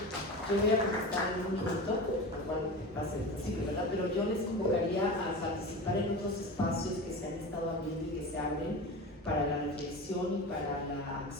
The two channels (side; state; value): both; normal; correlation 0.29